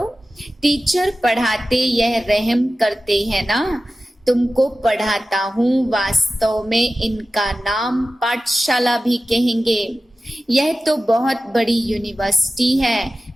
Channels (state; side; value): normal; both; correlation 0.95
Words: टीचर पढ़ाते यह रहम करते हैं ना। तुमको पढ़ाता हूँ, वास्तव में इनका नाम पाठशाला भी कहेंगे। यह तो बहुत बड़ी यूनिवर्सिटी है,